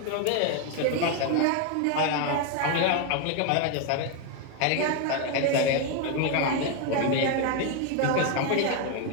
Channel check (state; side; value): different; both; correlation 0.01